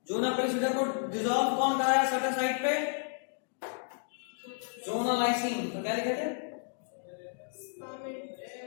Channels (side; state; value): right; silent; 56 dB below the other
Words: जोना पेलिसिडा को डिजॉल्व कौन कराया सर्टेन साइट पे, जोना लाइसिन। तो क्या लिखे थे,